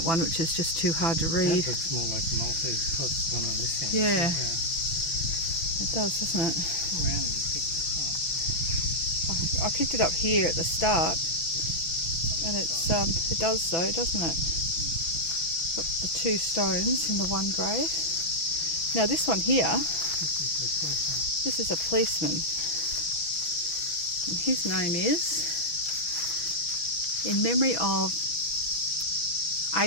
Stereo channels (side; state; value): right; late; 6.1 ms